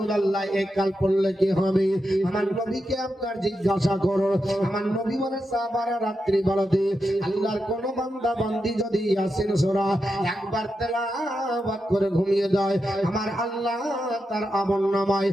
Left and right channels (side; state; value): both; normal; correlation 0.87